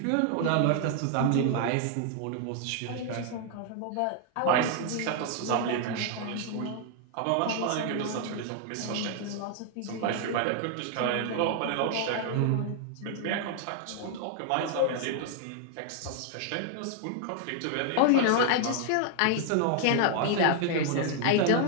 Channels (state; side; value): different; both; correlation 0.00